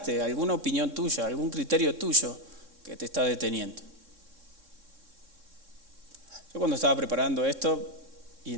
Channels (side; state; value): left; late; 3.6 ms